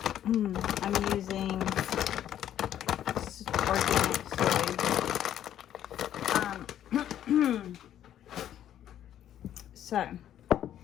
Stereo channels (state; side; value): quieter; right; 11.0 dB